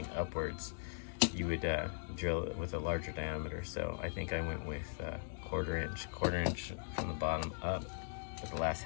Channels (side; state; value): right; silent; digital silence